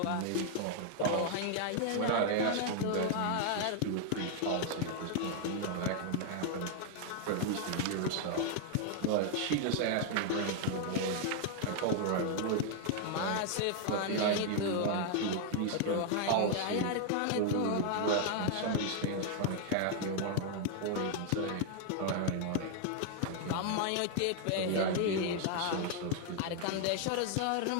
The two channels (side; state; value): both; different; correlation 0.00